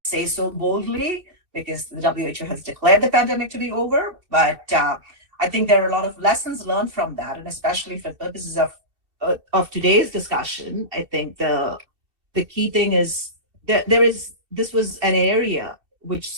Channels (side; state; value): left; late; 2.7 ms